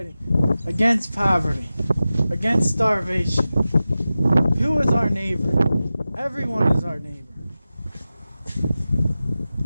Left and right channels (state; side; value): inverted; both; correlation -0.95